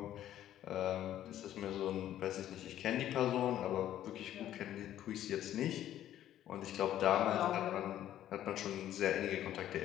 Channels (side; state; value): right; quieter; 12.0 dB